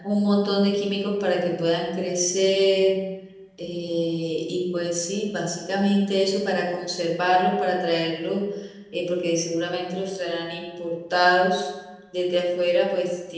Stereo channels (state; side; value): identical; both; correlation 1.00